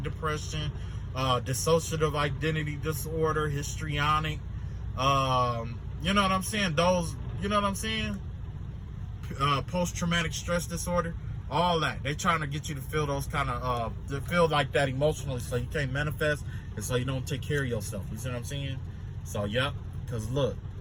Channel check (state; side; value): identical; both; correlation 1.00